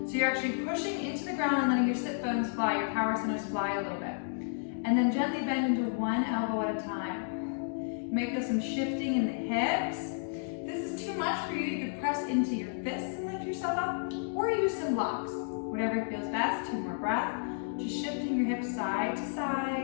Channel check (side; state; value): right; silent; digital silence